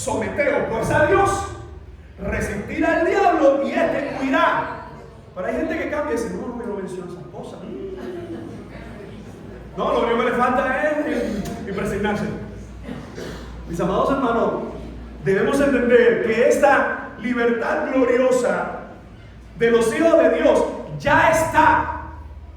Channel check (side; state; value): both; identical; correlation 1.00